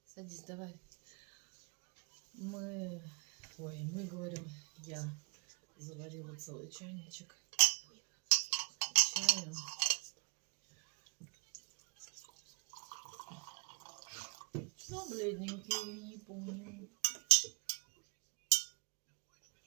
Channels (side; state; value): left; quieter; 36.1 dB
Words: Садись, давай. Мы говорим, я заварила целый чайничек чая. Ну, бледненький, не помню.